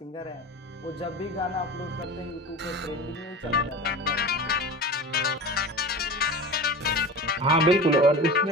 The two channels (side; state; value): both; normal; correlation 0.32